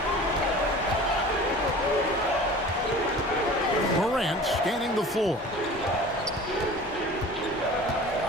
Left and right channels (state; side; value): normal; both; correlation 0.41